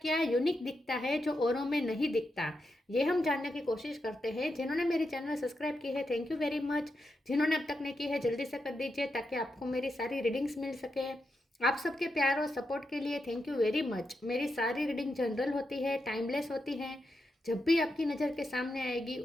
यूनिक दिखता है जो औरों में नहीं दिखता। ये हम जानने की कोशिश करते हैं। जिन्होंने मेरे चैनल सब्सक्राइब की है, थैंक यू वेरी मच। जिन्होंने अब तक नहीं की है, जल्दी से कर दीजिए ताकि आपको मेरी सारी रीडिंग्स मिल सके। आप सबके प्यार और सपोर्ट के लिए थैंक यू वेरी मच। मेरी सारी रीडिंग जनरल होती है, टाइमलेस होती है। जब भी आपकी नज़र के सामने आएगी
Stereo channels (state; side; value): normal; both; correlation 0.86